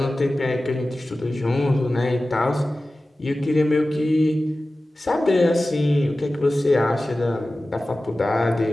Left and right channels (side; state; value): both; normal; correlation 0.96